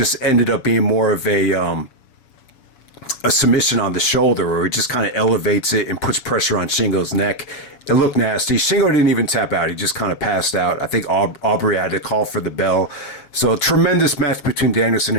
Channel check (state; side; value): late; right; 7.1 ms